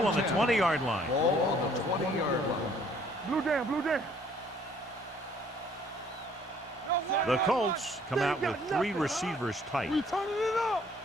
on the 20-yard line. Ball on the 20-yard line. Blue down, blue down. The Colts come out with 3 receivers tight. We turning it up.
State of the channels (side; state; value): both; normal; correlation 0.60